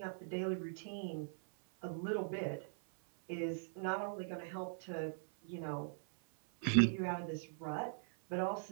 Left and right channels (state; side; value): silent; left; 50 dB below the other